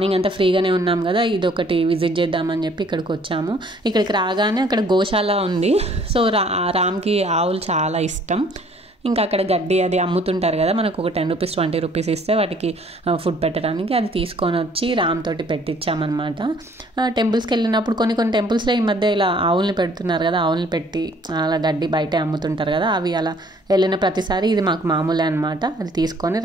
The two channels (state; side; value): normal; both; correlation 0.59